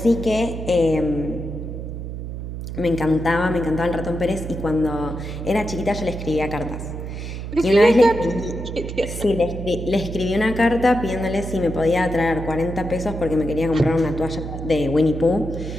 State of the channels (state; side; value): noise; right; hum, 7 dB below the sound